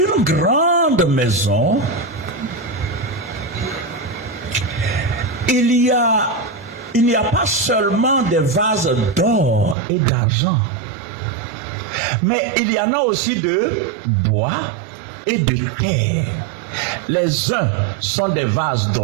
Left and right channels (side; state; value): left; drops out; at 9.8 s